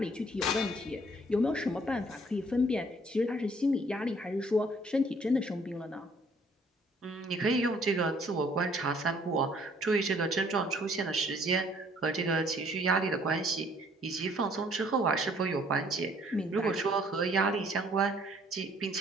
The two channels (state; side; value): normal; both; correlation 0.60